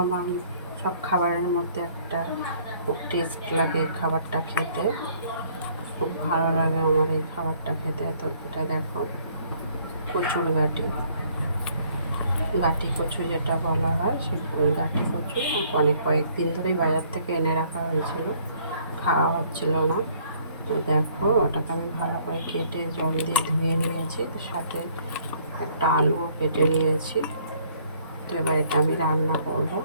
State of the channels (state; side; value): inverted; both; correlation -0.62